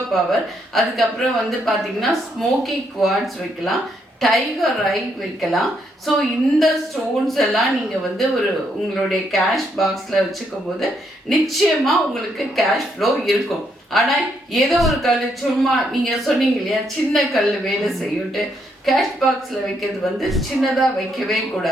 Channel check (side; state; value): both; normal; correlation 0.75